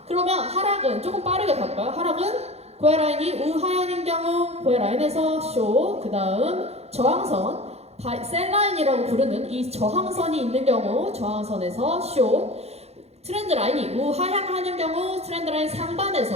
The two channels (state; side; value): late; left; 0.31 ms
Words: 그러면 하락은 조금 빠르게 갈까요? 하락은 고야 라인이 우하향인 경우 고야 라인에서 쇼, 그 다음 저항선 셀 라인이라고 부르는 이 저항선이 있는 경우 저항선에서 쇼, 트렌드 라인이 우하향하는 경우 트렌드 라인 상단에서